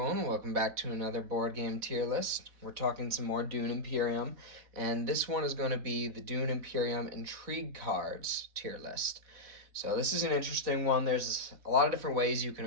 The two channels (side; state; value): left; late; 4.1 ms